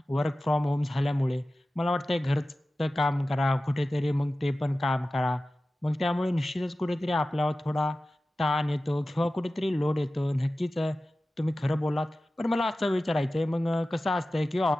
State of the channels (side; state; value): both; normal; correlation 0.95